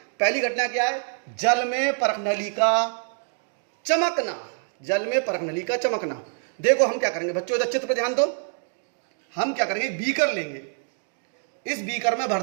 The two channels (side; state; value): left; silent; 61 dB below the other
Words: पहली घटना क्या है? जल में परखनली का चमकना। जल में परखनली का चमकना। देखो हम क्या करेंगे बच्चों, इधर चित्र पर ध्यान दो। हम क्या करेंगे, बीकर लेंगे, इस बीकर में भर